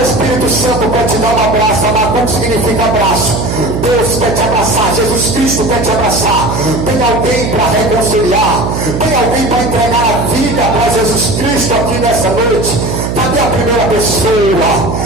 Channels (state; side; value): noise; right; hum, 3 dB below the sound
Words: Espírito Santo quer te dar um abraço. Abacuque significa abraço. Deus quer te abraçar, Jesus Cristo quer te abraçar. Tem alguém para reconciliar? Tem alguém para entregar a vida para Jesus Cristo aqui nessa noite? Cadê a primeira pessoa?